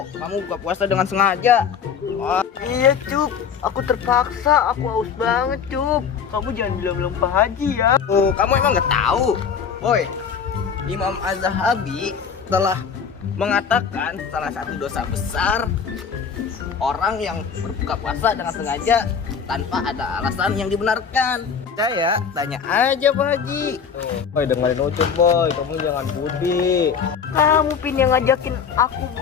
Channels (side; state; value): right; quieter; 6.7 dB